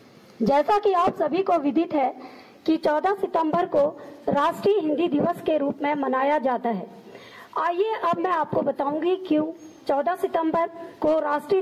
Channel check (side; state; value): both; identical; correlation 1.00